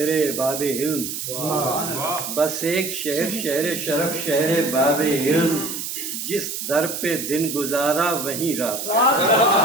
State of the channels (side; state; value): right; noise; hiss, 5 dB below the sound